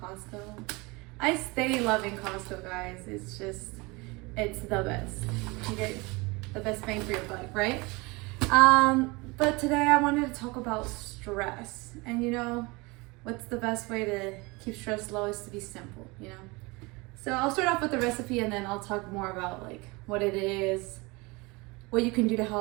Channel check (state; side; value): quieter; left; 25.3 dB